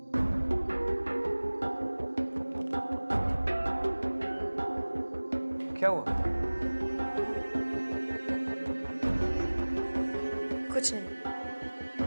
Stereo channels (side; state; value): both; inverted; correlation -1.00